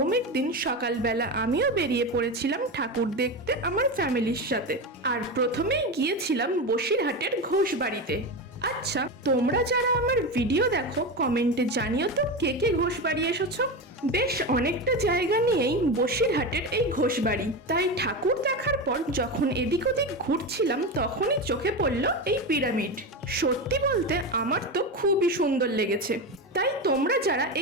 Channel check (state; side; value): normal; both; correlation 0.19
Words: দিন সকালবেলা আমিও বেরিয়ে পড়েছিলাম ঠাকুর দেখতে আমার ফ্যামিলির সাথে। আর প্রথমেই গিয়েছিলাম বসিরহাটের ঘোষবাড়িতে। আচ্ছা, তোমরা যারা আমার ভিডিও দেখো কমেন্টে জানিও তো কে কে ঘোষবাড়ি এসেছো। বেশ অনেকটা জায়গা নিয়েই বসিরহাটের এই ঘোষবাড়ি, তাই ঠাকুর দেখার পর যখন এদিক ওদিক ঘুরছিলাম তখনই চোখে পড়ল এই পিরামিড। সত্যি বলতে আমার তো খুবই সুন্দর লেগেছে। তাই তোমরা যারা